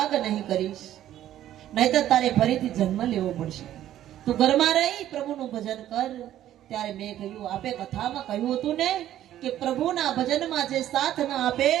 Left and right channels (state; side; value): quieter; left; 12.4 dB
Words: નહીં કરીશ, નહીતર તારે ફરીથી જન્મ લેવો પડશે। તું ઘરમાં રહી પ્રભુનું ભજન કર। ત્યારે મેં કહ્યું, આપે કથામાં કહ્યું હતું ને કે પ્રભુના ભજનમાં જે સાથ ન આપે,